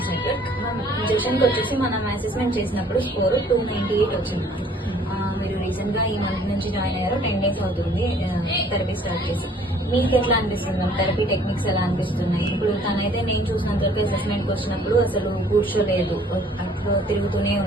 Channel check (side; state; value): both; normal; correlation 0.57